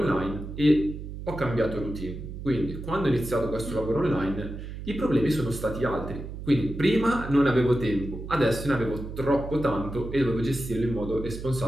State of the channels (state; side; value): noise; right; hum, 9 dB below the sound